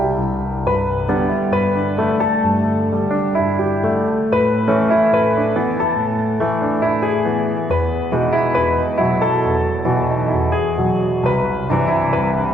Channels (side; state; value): both; normal; correlation 0.76